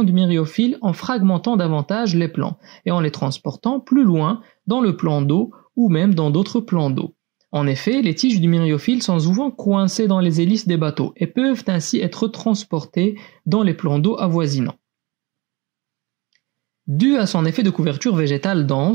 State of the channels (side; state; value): left; quieter; 24.8 dB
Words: du myriophylle en fragmentant davantage les plants et en les transportant plus loin dans le plan d'eau ou même dans d'autres plans d'eau. En effet, les tiges du myriophylle sont souvent coincées dans les hélices des bateaux et peuvent ainsi être transportées dans les plans d'eau avoisinants. Dû à son effet de couverture végétale